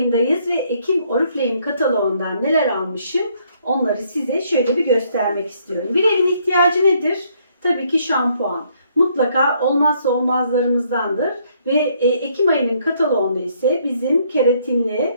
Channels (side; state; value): both; inverted; correlation -0.68